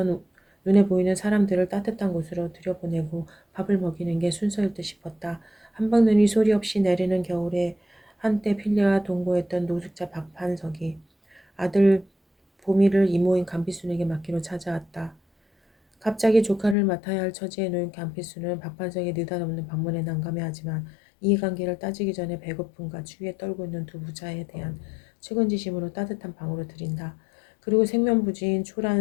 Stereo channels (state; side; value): drops out; right; at 16.8 s